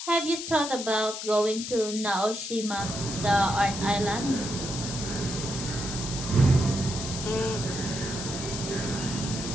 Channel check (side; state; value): left; noise; hiss, 7 dB below the sound